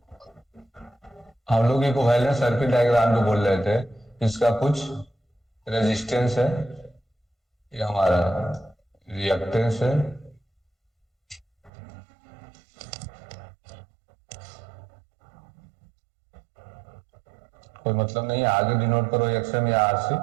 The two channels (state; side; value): drops out; left; at 11.7 s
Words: हम लोग इक्विवेलेंट सर्किट डायग्राम जो बोल रहे थे, इसका कुछ रेजिस्टेंस है, ये हमारा रिएक्टेंस है, कोई मतलब नहीं है, आगे डिनोट करो एक्सएम या आरसी,